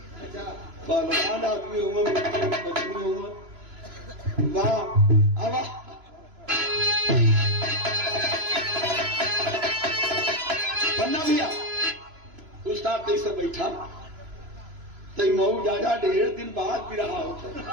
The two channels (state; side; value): late; left; 3.0 ms